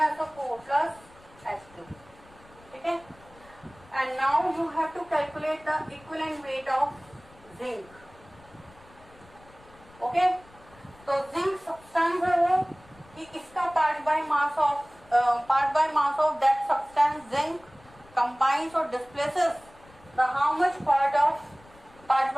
plus H2. Okay? And now you have to calculate the equivalent weight of zinc. Okay? तो zinc substance है वो कि इसका part by mass of that substance zinc combines or displaces the how much part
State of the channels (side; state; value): left; noise; rumble, 25 dB below the sound